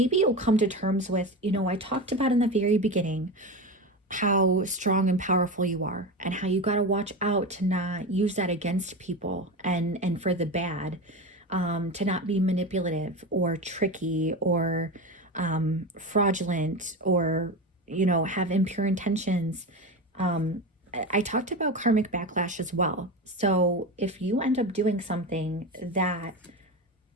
you'll come to terms with, I talked about in the very beginning how strong and powerful you are, and how you got to watch out to not use that against people and for the bad, to not be manipulative or tricky or fraudulent or, have impure intentions. I talked about karmic backlash as well. So if you end up doing something that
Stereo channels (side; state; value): both; normal; correlation 0.23